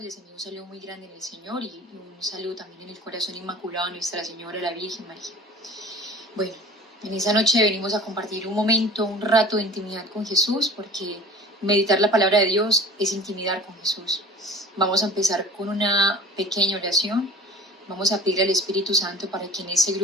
les envío un saludo muy grande en el Señor y un saludo también en el corazón inmaculado de Nuestra Señora, la Virgen María. Bueno, en esa noche venimos a compartir un momento, un rato de intimidad con Jesús, porque meditar la palabra de Dios es intimidar con Jesús. Vamos a empezar con una pequeña oración. Vamos a pedir al Espíritu Santo para que en ese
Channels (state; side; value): normal; both; correlation 0.42